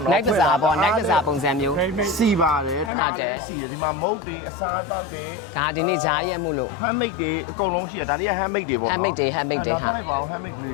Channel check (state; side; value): drops out; right; at 2.9 s